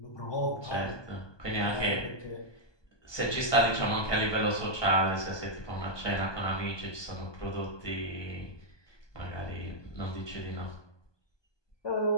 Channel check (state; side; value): late; right; 1.2 ms